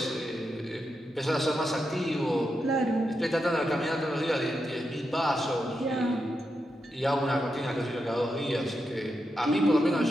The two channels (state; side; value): normal; both; correlation 0.86